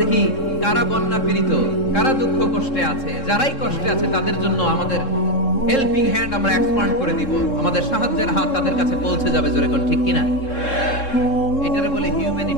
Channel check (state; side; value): late; right; 3.7 ms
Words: দেখি কারা বন্যা পীড়িত, কারা দুঃখ কষ্টে আছে, যারাই কষ্টে আছে তাদের জন্য আমাদের হেল্পিং হ্যান্ড আমরা এক্সপান্ড করে দিব, আমাদের সাহায্যের হাত তাদের কাছে পৌঁছে যাবে। জোরে কোন ঠিক কিনা? এটারে বলে